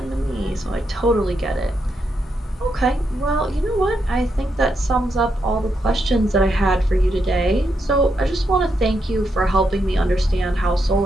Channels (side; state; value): both; normal; correlation 0.81